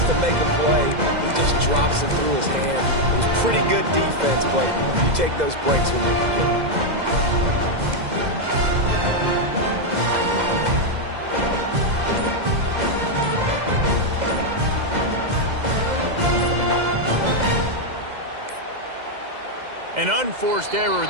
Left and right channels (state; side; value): late; left; 2.0 ms